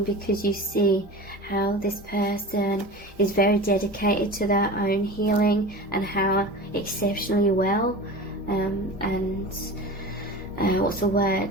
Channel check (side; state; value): both; normal; correlation 0.33